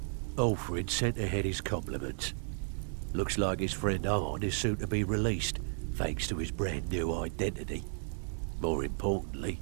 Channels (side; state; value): left; silent; digital silence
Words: Olfrid sent ahead his compliments. Looks like his friend Arn is soon to be released, thanks to his brand new identity. More importantly,